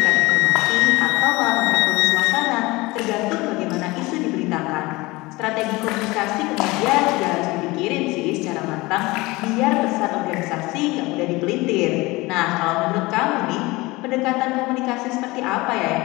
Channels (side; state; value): right; quieter; 21.9 dB